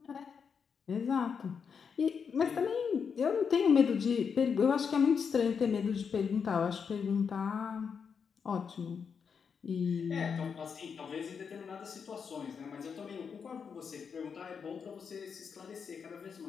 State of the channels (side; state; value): right; quieter; 6.3 dB